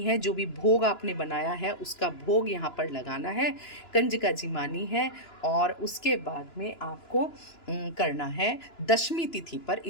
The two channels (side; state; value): right; late; 2.9 ms